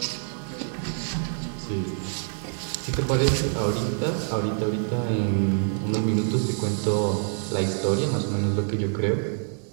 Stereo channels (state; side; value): silent; left; 61 dB below the other